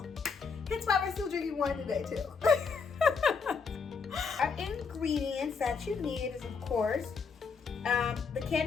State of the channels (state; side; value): quieter; right; 5.4 dB